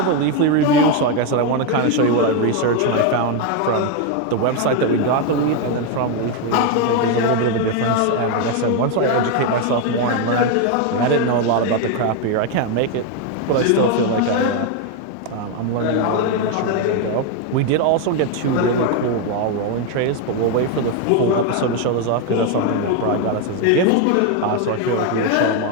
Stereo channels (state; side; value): different; both; correlation 0.02